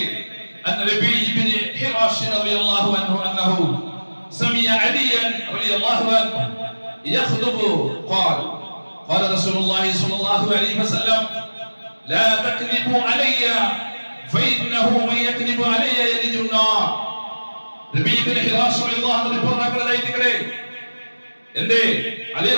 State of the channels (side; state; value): both; inverted; correlation -1.00